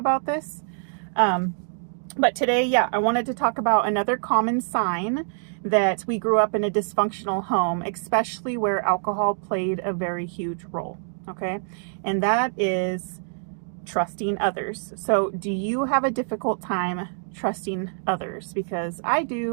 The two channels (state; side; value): silent; left; digital silence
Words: this. But today, I wanted to talk about another common sign that we grew up in a dysfunctional home, especially where alcohol played a very huge role, okay? And that is trusting others. So do you have a difficult time trusting others? Because I